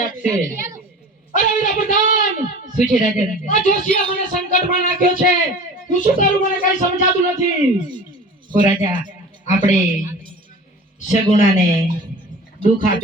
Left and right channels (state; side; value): normal; both; correlation 0.40